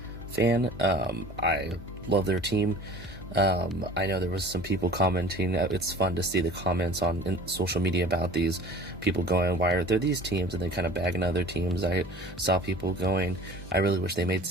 fan. I love their team. I know there was some people commenting. It's fun to see the comments on social media about these people going, why are there these teams? And they kind of bagging other teams. I saw people going, I really wish they made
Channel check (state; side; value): normal; both; correlation 0.44